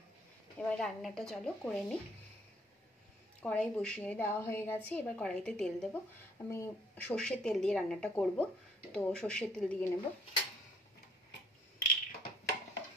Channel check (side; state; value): both; normal; correlation 0.64